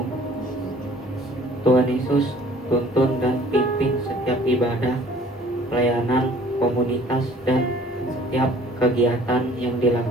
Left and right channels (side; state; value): both; normal; correlation 0.53